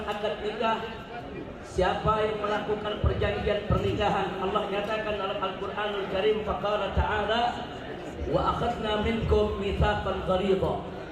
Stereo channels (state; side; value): identical; both; correlation 1.00